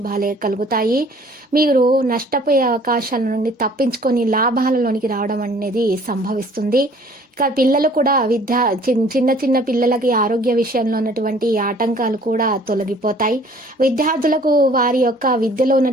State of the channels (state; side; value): normal; both; correlation 0.54